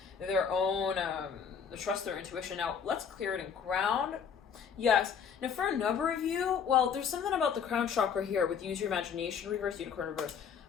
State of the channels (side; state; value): right; quieter; 7.0 dB